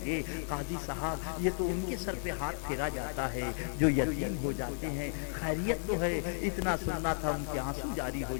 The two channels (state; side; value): silent; right; 55 dB below the other